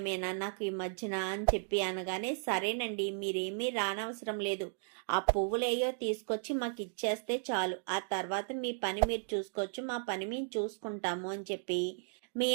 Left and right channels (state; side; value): silent; left; digital silence